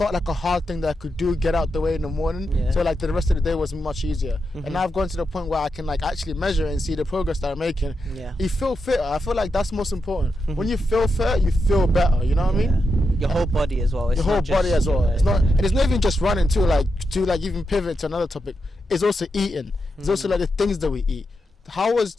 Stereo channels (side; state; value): both; normal; correlation 0.86